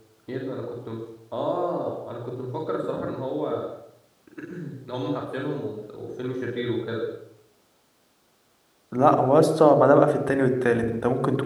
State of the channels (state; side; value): identical; both; correlation 1.00